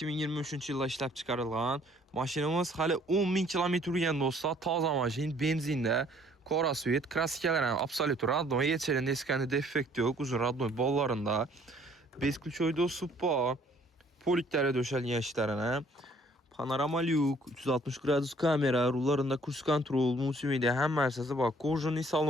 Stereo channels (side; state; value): both; normal; correlation 0.60